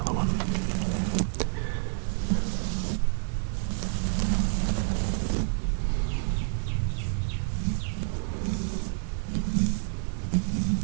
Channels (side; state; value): left; silent; digital silence